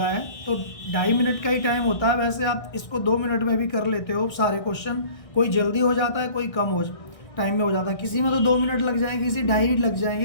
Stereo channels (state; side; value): late; right; 1.6 ms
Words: है, तो 2.5 मिनट का ही टाइम होता है। वैसे आप इसको 2 मिनट में भी कर लेते हो सारे क्वेश्चन, कोई जल्दी हो जाता है, कोई कम हो टाइम में हो जाता है। किसी में तो 2 मिनट लग जाएंगे, किसी 2.5 लग